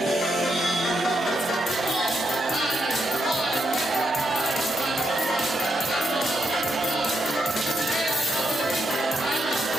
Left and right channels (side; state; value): both; normal; correlation 0.80